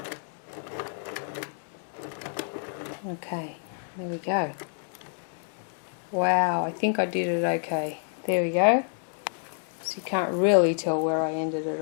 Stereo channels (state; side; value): silent; right; 59 dB below the other